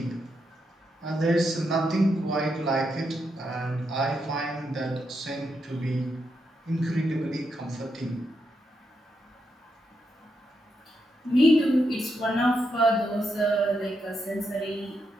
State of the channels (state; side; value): normal; both; correlation 0.82